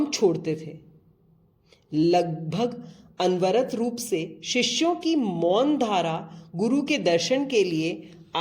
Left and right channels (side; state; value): both; identical; correlation 1.00